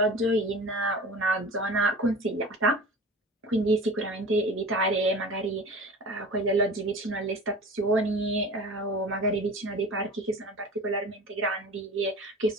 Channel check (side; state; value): both; normal; correlation 0.37